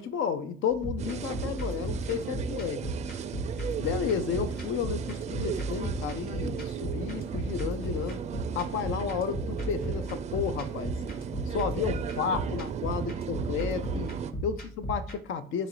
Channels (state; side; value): normal; both; correlation 0.26